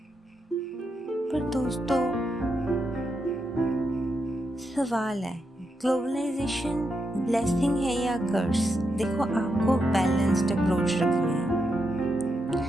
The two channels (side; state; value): both; normal; correlation 0.84